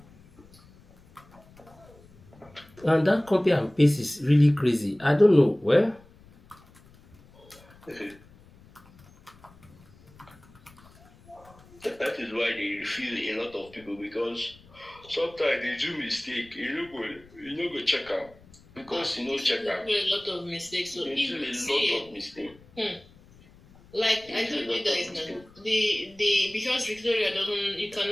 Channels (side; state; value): left; noise; rumble, 25 dB below the sound